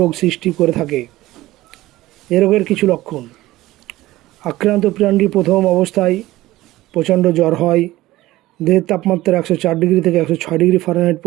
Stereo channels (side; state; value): left; quieter; 17.0 dB